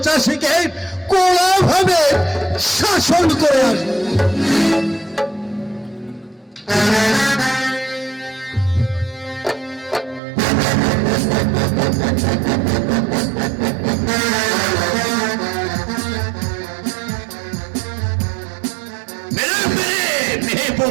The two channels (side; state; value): left; drops out; at 10.2 s